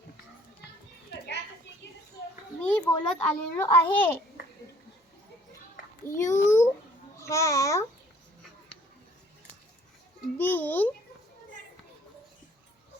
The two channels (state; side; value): normal; both; correlation 0.58